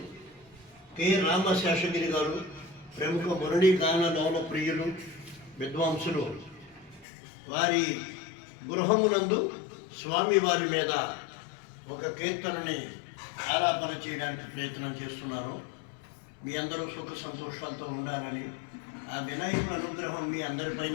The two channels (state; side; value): drops out; right; at 7.1 s